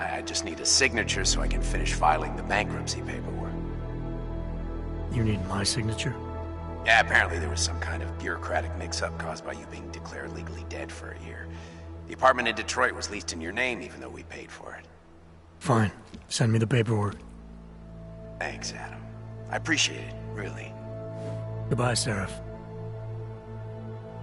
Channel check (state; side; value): identical; both; correlation 1.00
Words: just need a signature so I can finish filing the bankruptcy paperwork. You need my signature? Yeah, apparently there was some kind of bureaucratic mix-up caused by you being declared legally dead for a year. The apartment in Detroit was leased in your name even though we paid for it. Fine. Send me the paperwork. Thanks, Adam. I appreciate it, really. Goodbye, Seraph.